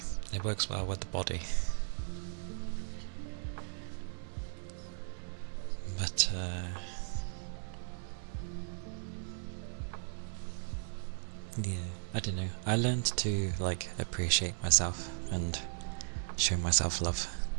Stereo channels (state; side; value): silent; left; 53 dB below the other